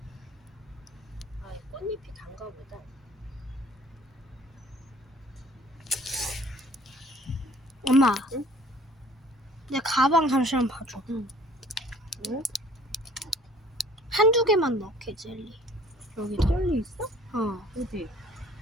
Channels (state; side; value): normal; both; correlation 0.53